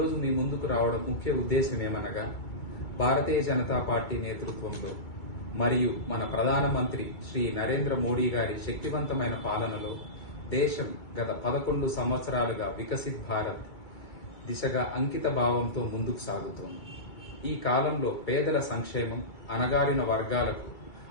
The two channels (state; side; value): late; right; 2.3 ms